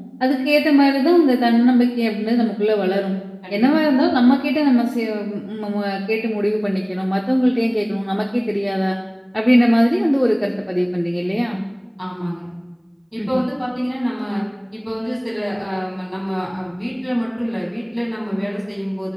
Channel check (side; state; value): both; identical; correlation 1.00